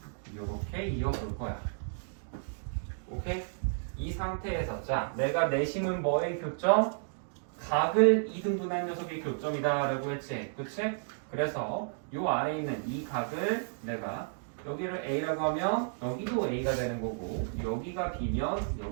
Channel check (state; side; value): silent; left; digital silence